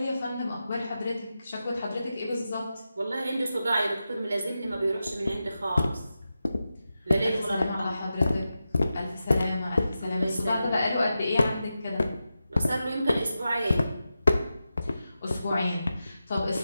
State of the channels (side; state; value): both; inverted; correlation -0.91